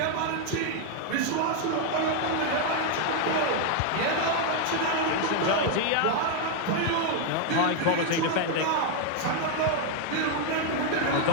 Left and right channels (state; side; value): different; both; correlation 0.00